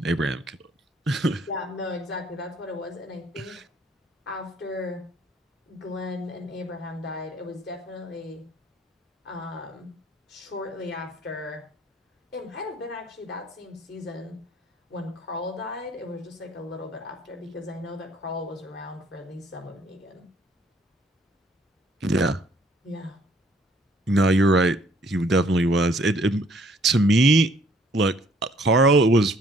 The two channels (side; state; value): both; normal; correlation 0.61